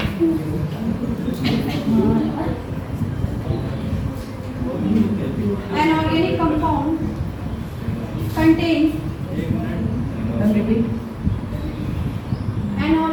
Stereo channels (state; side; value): identical; both; correlation 1.00